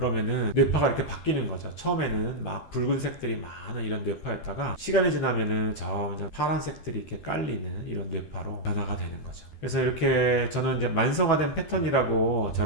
뇌파가 이렇게 바뀌는 거죠. 처음에는 막 붉은색들이 많은 이런 뇌파였다가 시간이 지나면은 점점 파란색들이 이렇게 깔리는 이런 뇌파로 변화가 되는 거죠. 그래서 이렇게 저는 이제 만성화된 패턴이라고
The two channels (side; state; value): right; late; 12 ms